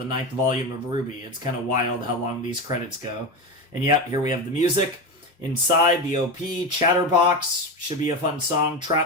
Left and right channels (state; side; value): normal; both; correlation 0.19